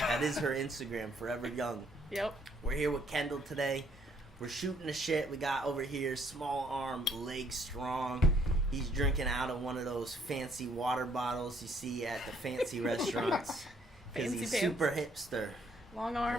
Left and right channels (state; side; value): normal; both; correlation 0.66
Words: is her Instagram, Forever Young. Yep. We're here with Kendall today. We're shooting the shit. We got over here small arm, leg strong. He's drinking out of one of those fancy water bottles you see at the fancy restaurants. Because he's pants. super hipster. Long